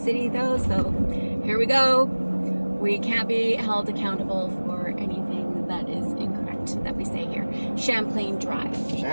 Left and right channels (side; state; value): both; inverted; correlation -1.00